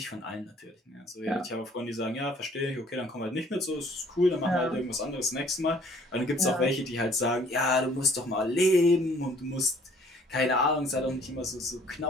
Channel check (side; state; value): both; normal; correlation 0.58